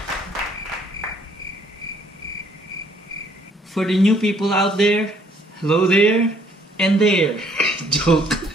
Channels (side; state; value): both; normal; correlation 0.64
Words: for the new people out there, hello there, and there. Joke.